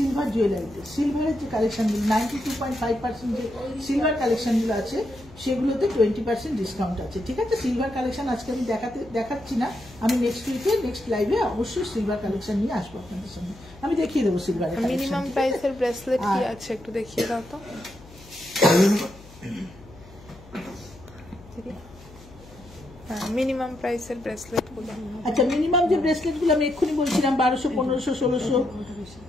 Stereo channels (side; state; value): left; noise; hum, 21 dB below the sound